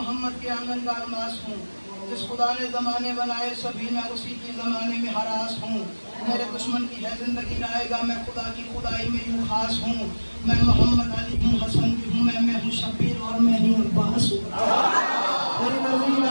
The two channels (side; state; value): both; inverted; correlation -1.00